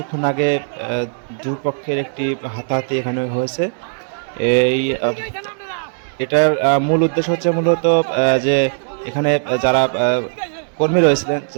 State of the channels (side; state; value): left; silent; 64 dB below the other